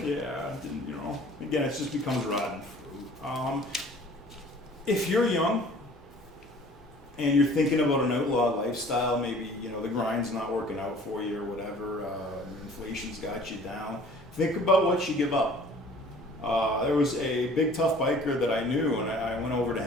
Yeah, I didn't, Again, it just becomes rotten fruit. If you're young and you're thinking about an outlaw lifestyle, maybe the grind's not working out for you or whatever, inflation's got you down. Think about what you give up. There was a big tough biker that I knew, and I went over to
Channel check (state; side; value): normal; both; correlation 0.50